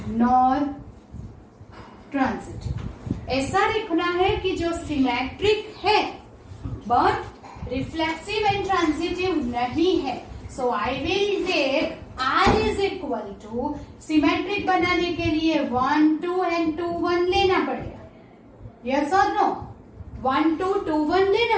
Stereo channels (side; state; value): both; identical; correlation 1.00